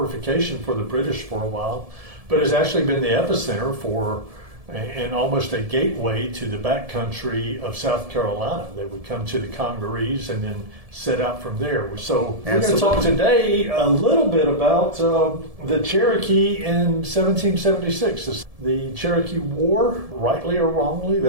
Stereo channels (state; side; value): late; left; 1.7 ms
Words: for the British for a while, but has actually been the epicenter for and almost a gateway to the backcountry of South Carolina. They would come to the Congarese and then set out from there. So we're going to talk today a little bit about the Cherokee in 1776. The Cherokee War, rightly or wrongly,